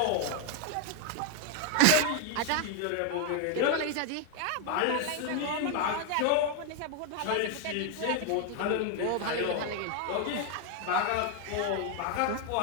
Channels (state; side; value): different; both; correlation 0.00